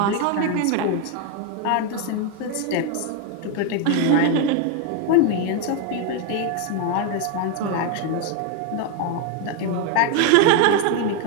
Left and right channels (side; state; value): both; different; correlation 0.01